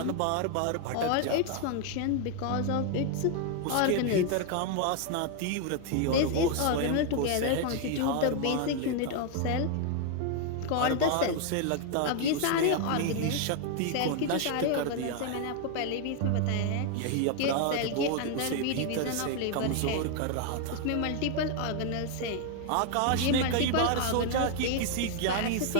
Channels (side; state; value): both; different; correlation 0.00